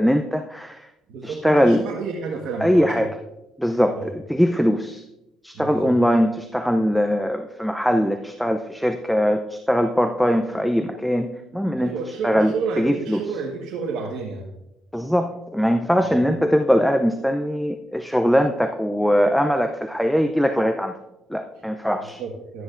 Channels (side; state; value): both; normal; correlation 0.94